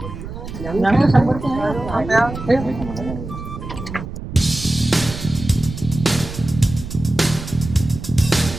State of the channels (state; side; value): noise; right; rumble, 10 dB below the sound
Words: Yang sabar jangan.